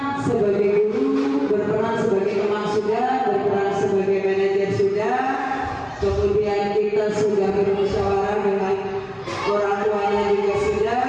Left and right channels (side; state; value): both; identical; correlation 1.00